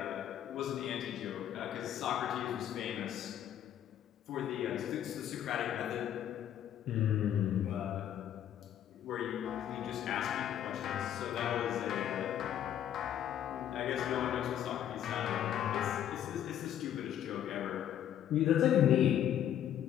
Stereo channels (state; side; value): quieter; right; 10.5 dB